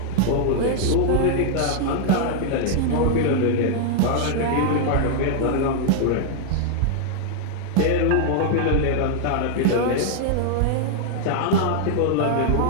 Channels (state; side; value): different; both; correlation -0.01